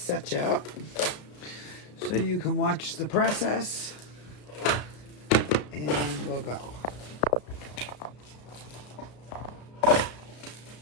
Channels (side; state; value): right; late; 34 ms